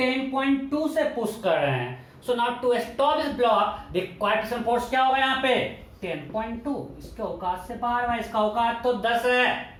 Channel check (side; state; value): both; identical; correlation 1.00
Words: से पुश कर रहे हैं। So now to stop this block required friction force क्या होगा यहाँ पे? 10.2। इसके औकात से बाहर है, इसका औकात तो 10 है,